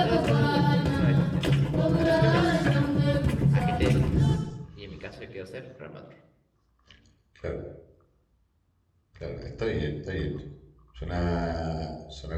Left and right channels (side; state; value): both; identical; correlation 1.00